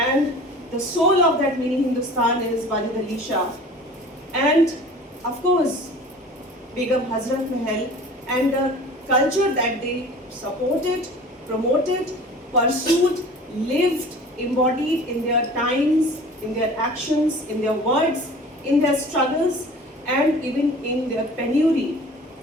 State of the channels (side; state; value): both; normal; correlation 0.43